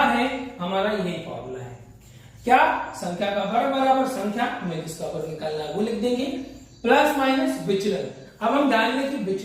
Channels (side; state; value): both; identical; correlation 1.00